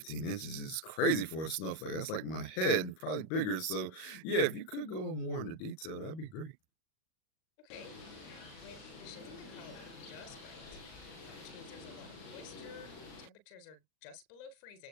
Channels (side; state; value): right; late; 38 ms